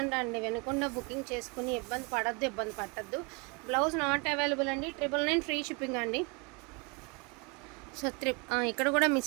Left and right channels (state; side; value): quieter; left; 30.4 dB